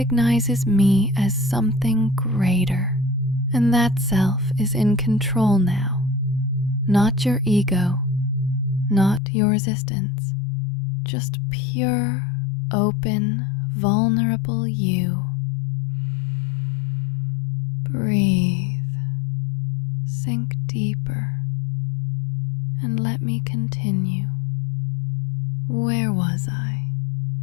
me as something greater. And that self is in control now, not your ego, not your resistance, just pure, open, vulnerable you. Breathe, sink deeper, and let me continue. Where was I?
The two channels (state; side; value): drops out; right; at 9.2 s